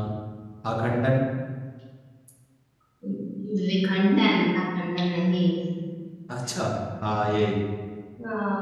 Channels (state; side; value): identical; both; correlation 1.00